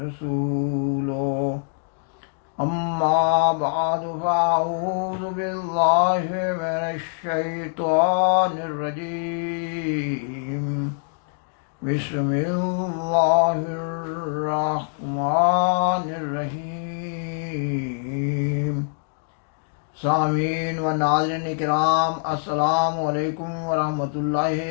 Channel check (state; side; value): silent; right; digital silence